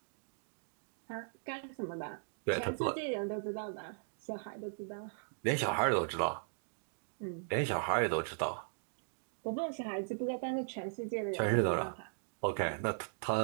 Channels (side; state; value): left; silent; digital silence